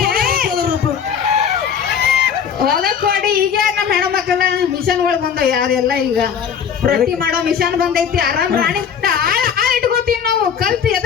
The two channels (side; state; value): right; quieter; 7.6 dB